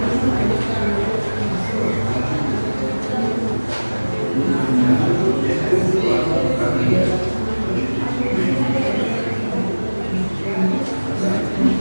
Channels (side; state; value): both; inverted; correlation -1.00